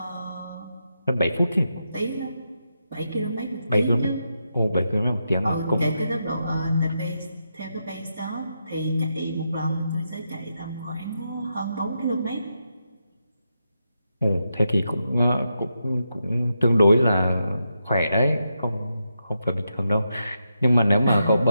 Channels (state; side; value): inverted; both; correlation -0.85